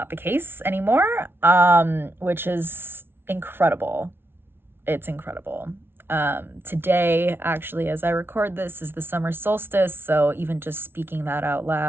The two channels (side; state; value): left; late; 0.11 ms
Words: the case anymore, which is incredible. It's incredible. Today, actually, as I record this, is the summer solstice, so even just speaking that out